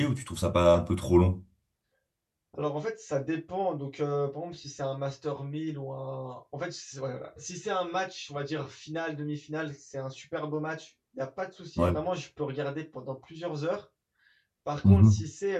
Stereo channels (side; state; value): both; identical; correlation 1.00